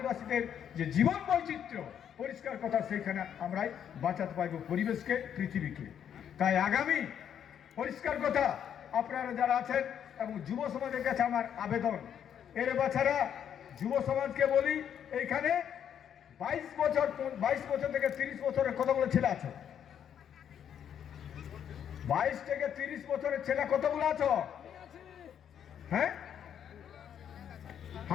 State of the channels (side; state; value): right; quieter; 9.0 dB